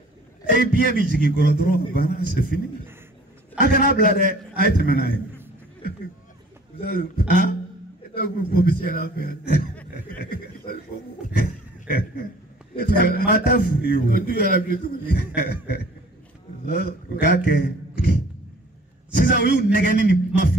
ye biɲɛ bɛ jigin kɔrɔ dɔrɔn banna c'est fini a kana bila dɛ a ye tɛmɛ n'a ye maa t'a furu ye o u k'a kɛ sisan u y'u nɛgɛni ni kuma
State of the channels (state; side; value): normal; both; correlation 0.51